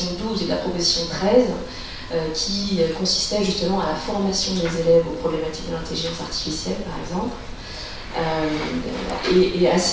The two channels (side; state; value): both; identical; correlation 1.00